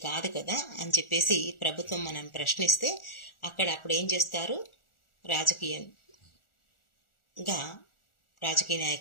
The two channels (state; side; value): late; right; 1.4 ms